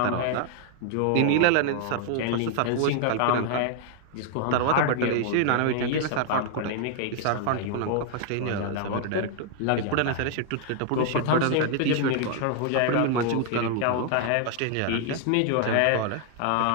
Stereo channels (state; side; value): different; both; correlation 0.00